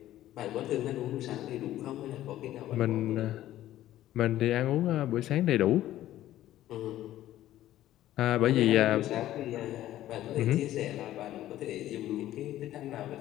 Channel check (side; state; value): right; quieter; 13.7 dB